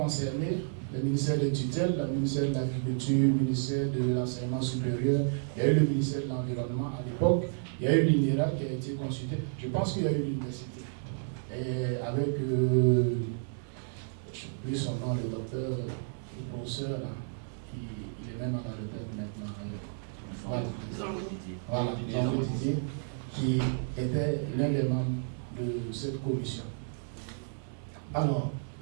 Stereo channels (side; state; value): left; silent; digital silence